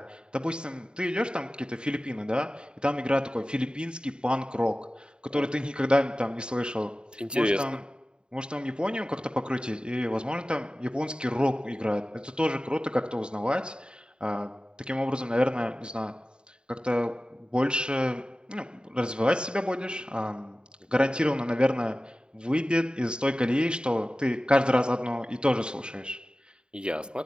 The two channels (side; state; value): left; late; 0.050 ms